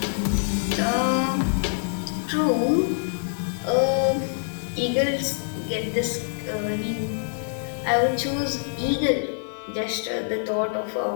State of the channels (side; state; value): right; silent; digital silence